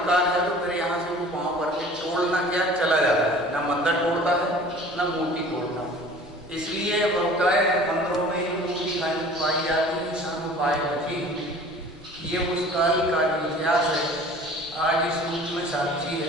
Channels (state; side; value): normal; both; correlation 0.46